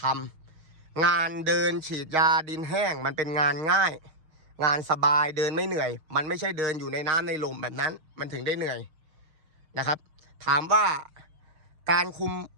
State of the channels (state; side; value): late; left; 6.5 ms